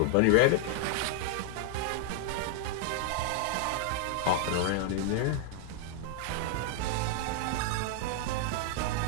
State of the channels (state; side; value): different; both; correlation 0.00